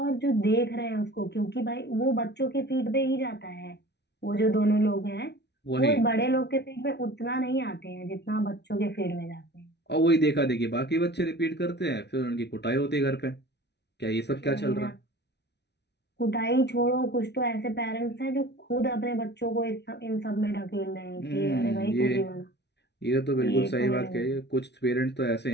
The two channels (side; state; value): right; late; 0.50 ms